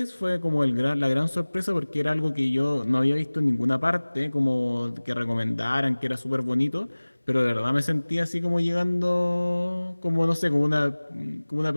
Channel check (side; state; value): both; inverted; correlation -1.00